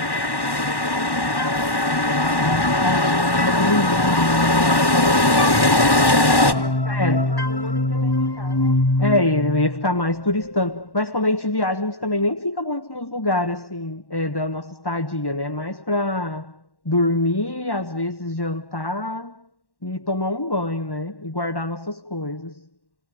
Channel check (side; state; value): right; late; 1.1 ms